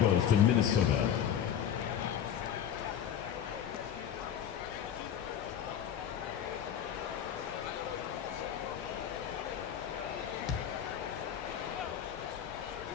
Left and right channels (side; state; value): right; quieter; 9.3 dB